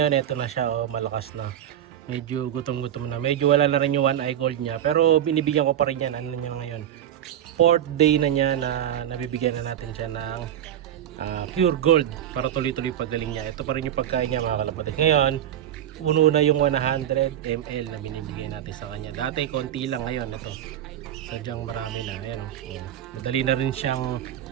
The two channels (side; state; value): left; quieter; 10.7 dB